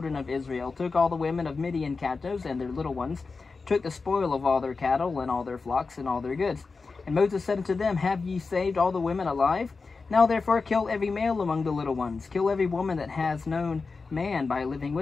of Israel, took all the women of Midian captives and their little ones, took the spoil of all their cattle and all their flocks and all their goods. And Moses said unto them, Have ye saved all the women alive? Now therefore kill every male among the little ones, kill every woman that has known man by living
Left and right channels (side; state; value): right; quieter; 4.3 dB